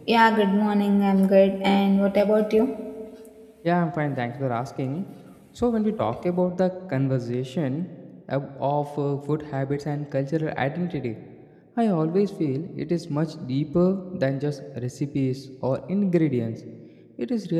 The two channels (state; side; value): identical; both; correlation 1.00